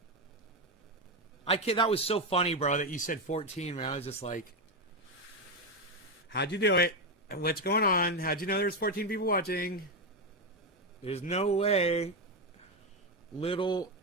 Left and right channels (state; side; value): normal; both; correlation 0.08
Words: That was so funny, bro, that you said 14, man. I was just like, how'd you do it? What's going on? How'd you know there's 14 people watching? There's no way. Little